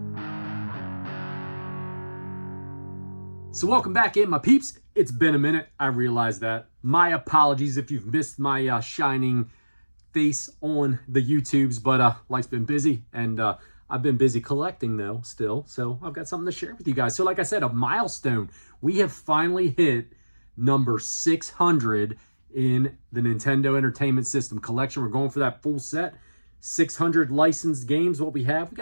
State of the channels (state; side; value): inverted; both; correlation -1.00